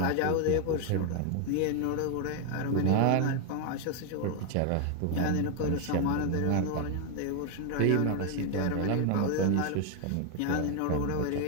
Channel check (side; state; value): both; different; correlation 0.01